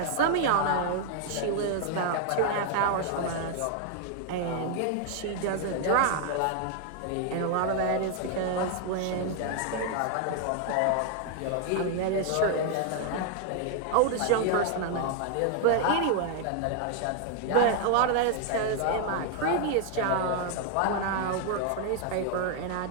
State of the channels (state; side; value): different; both; correlation 0.00